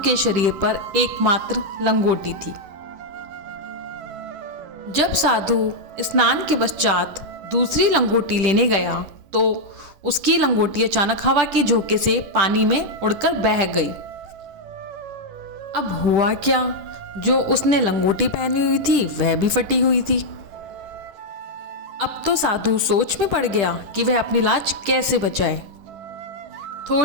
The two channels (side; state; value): left; late; 10 ms